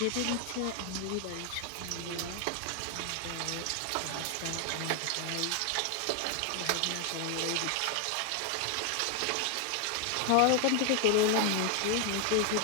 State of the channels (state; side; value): different; both; correlation 0.01